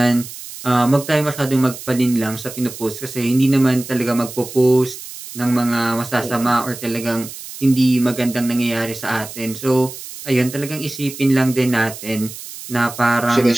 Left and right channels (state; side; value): noise; right; hiss, 13 dB below the sound